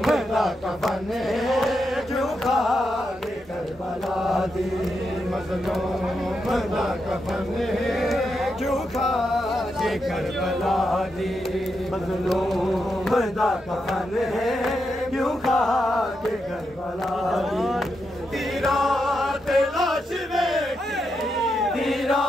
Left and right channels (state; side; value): normal; both; correlation 0.84